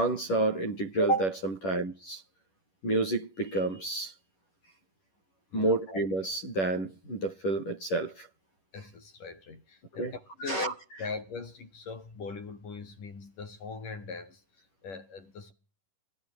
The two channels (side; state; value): right; late; 11 ms